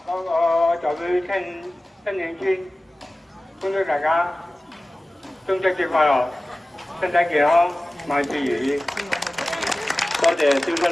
我代表新慶村恭祝大家中秋節快樂，身體健康，萬事如意。多謝蕭春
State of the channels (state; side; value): normal; both; correlation 0.96